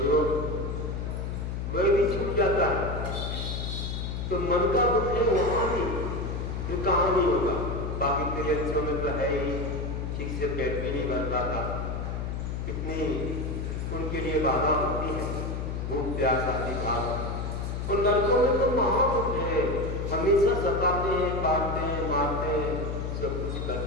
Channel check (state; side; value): noise; left; hum, 3 dB below the sound